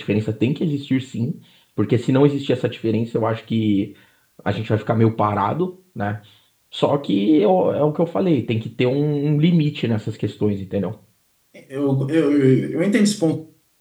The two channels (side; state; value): both; identical; correlation 1.00